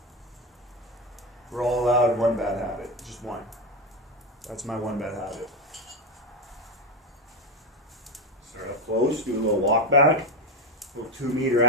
We're all allowed one bad habit, just one. That's my one bad habit. Start up close, do a little walk back, little 2 meter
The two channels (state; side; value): normal; both; correlation 0.13